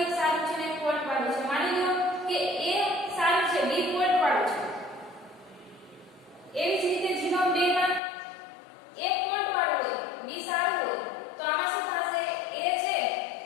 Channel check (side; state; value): right; drops out; at 8.0 s